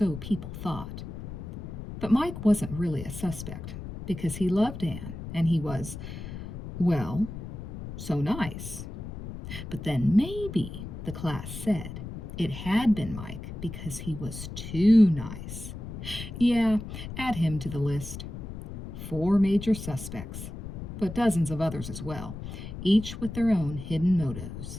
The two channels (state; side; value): noise; left; rumble, 9 dB below the sound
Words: people thought. But Mike wasn't really a suspect, because he loved Anne, and he was, well, so nice. But then maybe, the class said, it had been Mike because he was too nice. Yeah, add him to the list. 4 major suspects, but dozens of others as well, each with their own hidden